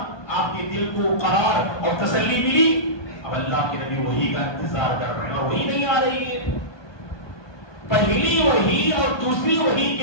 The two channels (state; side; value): late; right; 1.2 ms